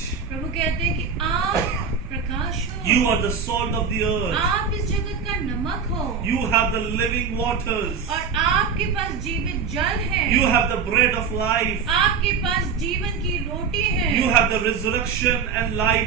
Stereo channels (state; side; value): quieter; left; 6.1 dB